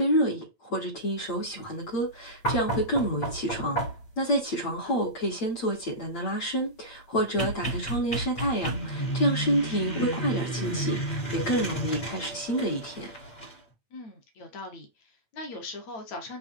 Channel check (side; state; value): right; late; 8.8 ms